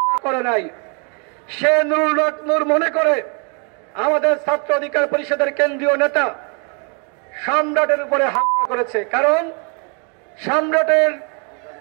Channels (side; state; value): left; quieter; 37.4 dB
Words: করে নাই। সে নুরুল হক নূর মনে করে আমাদের ছাত্র অধিকার পরিষদের কেন্দ্রীয় নেতা সম্রাটের উপরে হামলা করেছে, কারণ সম্রাটের